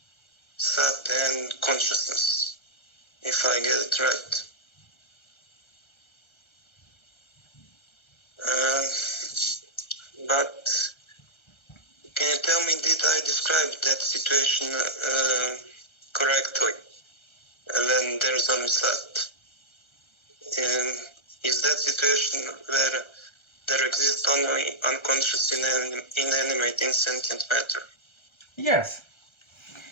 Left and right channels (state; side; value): late; right; 1.3 ms